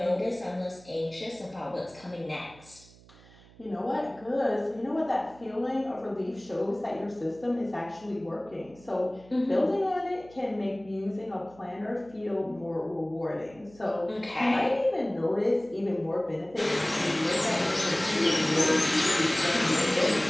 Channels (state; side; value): noise; right; hum, 24 dB below the sound